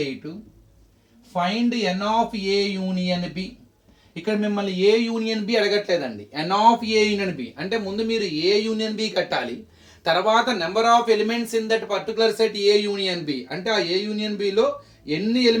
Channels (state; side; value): identical; both; correlation 1.00